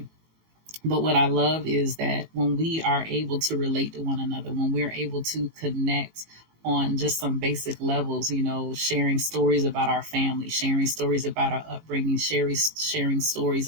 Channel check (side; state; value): left; late; 19 ms